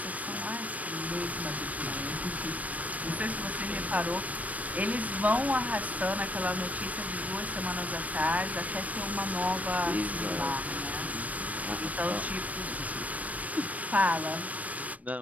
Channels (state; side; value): late; left; 0.070 ms